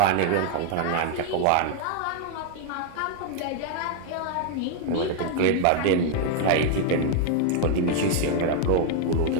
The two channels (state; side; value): different; both; correlation 0.00